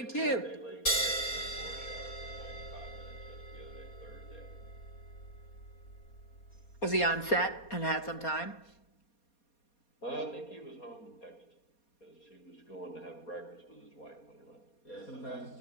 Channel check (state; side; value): late; right; 4.2 ms